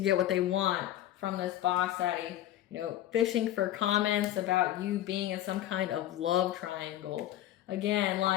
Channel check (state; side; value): quieter; right; 13.0 dB